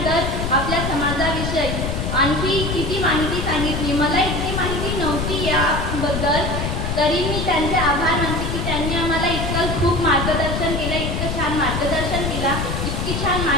तर आपल्या समाजाविषयी आणखी किती माहिती सांगितली. मला इतकी माहिती नव्हती याबद्दल, तरी मी त्यांचे आभार मानते की त्यांनी आम्हाला इतकं खूप मार्गदर्शन केलं, इतकं छान मार्गदर्शन केलं, इतकी छान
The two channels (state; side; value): noise; left; rumble, 2 dB below the sound